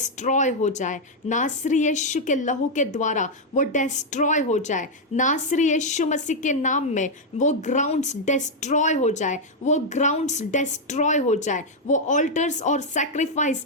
हो जाए नासरी यीशु के लहू के द्वारा, वो डिस्ट्रॉय हो जाए नासरी यीशु मसीह के नाम में। वो ग्राउंड्स डिस्ट्रॉय हो जाए, वो ग्राउंड्स डिस्ट्रॉय हो जाए, वो ऑल्टर्स और सैक्रिफाइस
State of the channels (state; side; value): normal; both; correlation -0.01